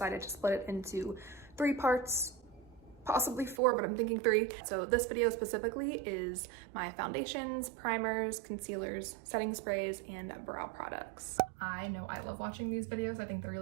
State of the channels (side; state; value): left; drops out; at 3.6 s